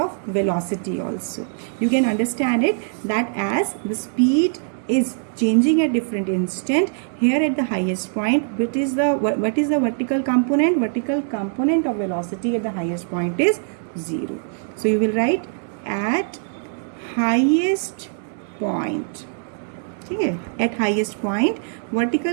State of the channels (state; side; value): silent; left; digital silence